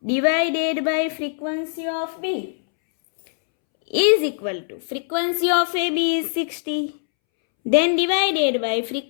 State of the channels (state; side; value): silent; right; 64 dB below the other